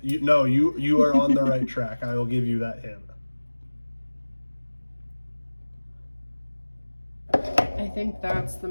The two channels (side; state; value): both; inverted; correlation -1.00